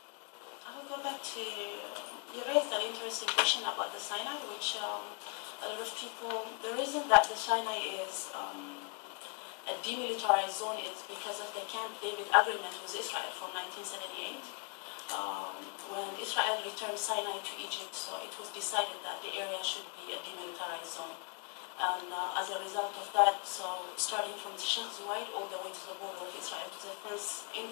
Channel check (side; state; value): right; quieter; 36.7 dB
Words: I will go back to, you raised an interesting question about the Sinai, which a lot of people, the reason that the Sinai is a demilitarized zone is because of the Camp David agreement with Israel from 1978. When Israel returned Sinai to Egypt, so it was decided that the area should be a demilitarized zone. And as a result of that, so starting from Sheikh Zayed all the way to the border of Israel, to the fence